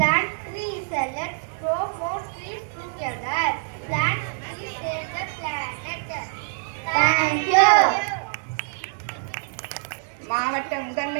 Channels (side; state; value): left; silent; digital silence